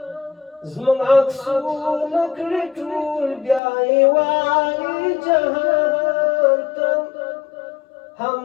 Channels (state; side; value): drops out; right; at 3.6 s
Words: زموږ عکسونه کړي ټول بیا یې وایي جهان ته هم